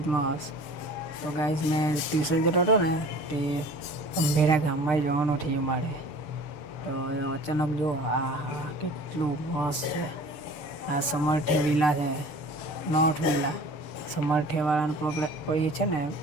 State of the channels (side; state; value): right; late; 6.7 ms